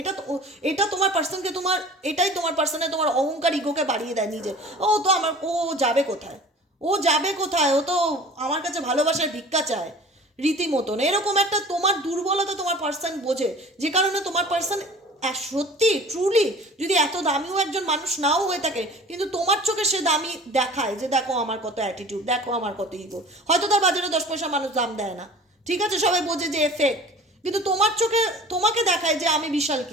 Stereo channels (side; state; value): both; normal; correlation 0.43